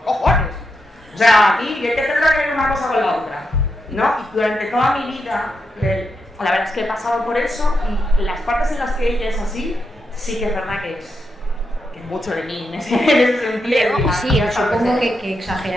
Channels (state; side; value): normal; both; correlation 0.84